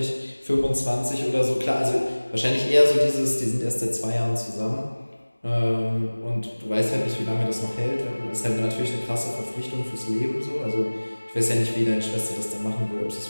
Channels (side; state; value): both; inverted; correlation -1.00